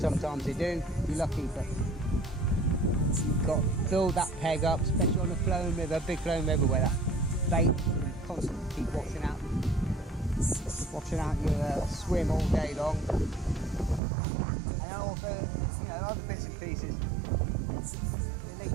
they do, you're lucky, but you've got to build that peg up, especially on a flowing river, big flowing river where that bait can constantly keep washing out your swim all day long. And also, you know, other bits and pieces. The link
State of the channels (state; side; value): drops out; left; at 14.0 s